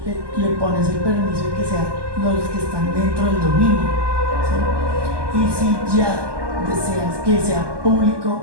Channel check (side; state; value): left; late; 1.2 ms